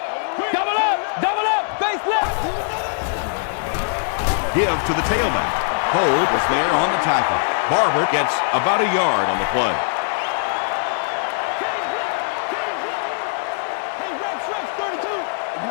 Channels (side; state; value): right; silent; digital silence